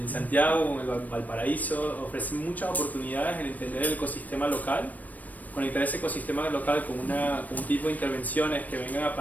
Santiago, en Valparaíso, ofrece muchas oportunidades en entender el ecosistema local, conectar ese ecosistema local con un tipo de intervenciones que vengan a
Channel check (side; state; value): right; late; 0.078 ms